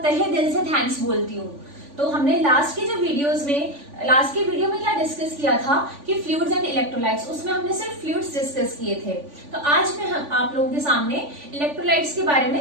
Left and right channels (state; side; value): late; left; 3.5 ms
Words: तहे दिल से थैंक्स बोलती हूँ। तो हमने लास्ट के वीडियो में क्या डिस्कस किया था कि फ्लूइड्स एंड इलेक्ट्रोलाइट्स, उसमें हमने सिर्फ फ्लूइड्स डिस्कस किए थे। तो आज मैं आप लोगों के सामने इलेक्ट्रोलाइट्स के बारे